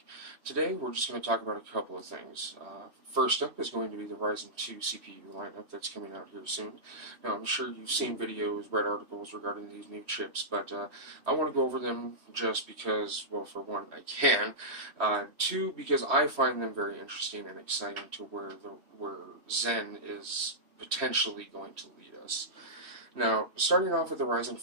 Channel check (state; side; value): late; left; 3.1 ms